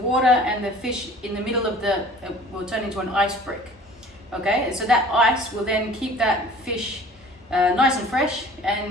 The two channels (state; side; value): normal; both; correlation 0.48